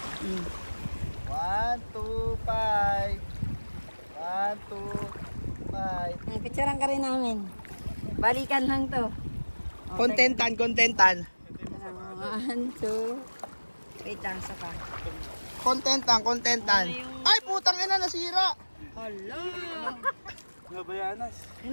1, 2, 5. 1, 2, 5. Ay, picturean ka rin namin. Balikan lang to. Contentan, contentan. 1, 2. Wait lang, sa pa. Contentan, contentan. Ay, putang ina, nasira. Hala. Nabayanas.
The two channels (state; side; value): inverted; both; correlation -1.00